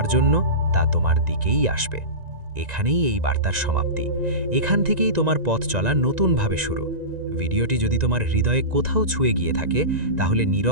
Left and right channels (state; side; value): late; left; 1.9 ms